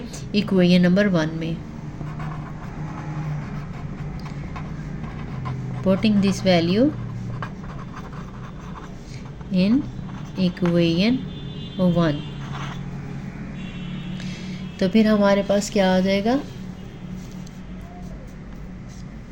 इक्वेशन नंबर 1 में। Putting this value in equation 1, तो फिर हमारे पास क्या आ जाएगा,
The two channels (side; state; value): both; identical; correlation 1.00